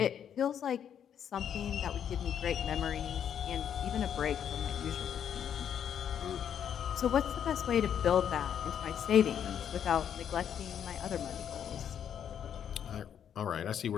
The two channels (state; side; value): quieter; right; 8.9 dB